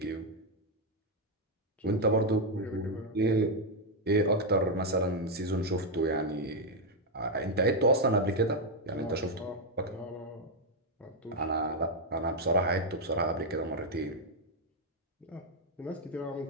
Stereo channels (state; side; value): normal; both; correlation 0.01